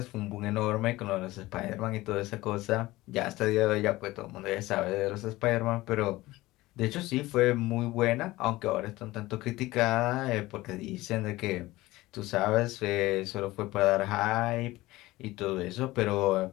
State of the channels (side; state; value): right; quieter; 18.7 dB